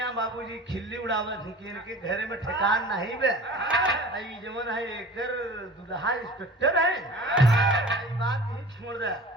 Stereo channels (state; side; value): normal; both; correlation 0.40